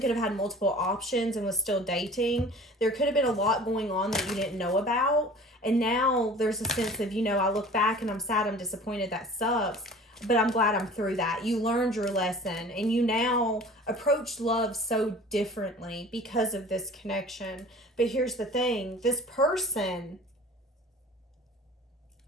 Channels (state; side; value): normal; both; correlation 0.44